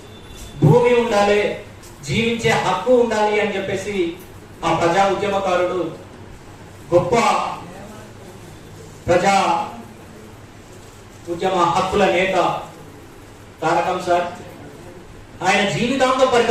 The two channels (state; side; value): identical; both; correlation 1.00